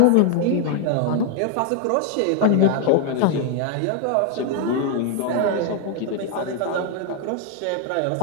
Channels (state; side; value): different; both; correlation 0.00